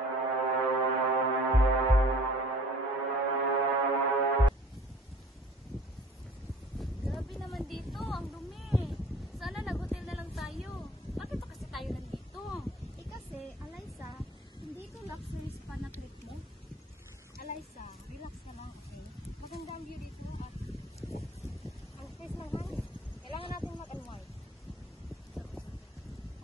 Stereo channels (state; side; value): normal; both; correlation 0.50